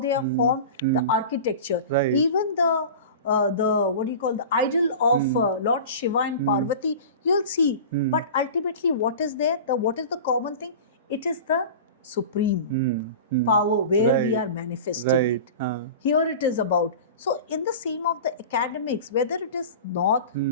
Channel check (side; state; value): both; inverted; correlation -0.35